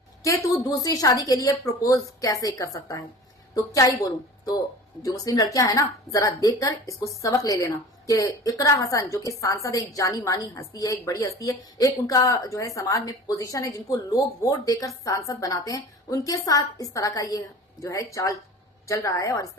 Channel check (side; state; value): both; normal; correlation 0.39